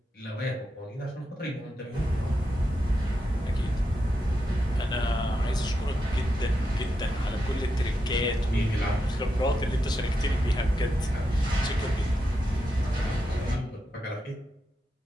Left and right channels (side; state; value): both; normal; correlation 0.86